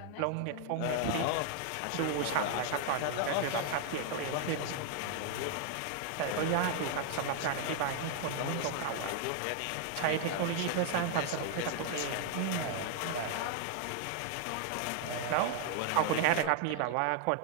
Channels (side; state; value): both; different; correlation 0.00